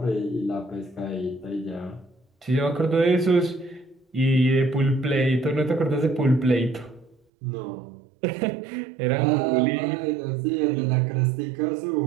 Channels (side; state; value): left; drops out; at 7.2 s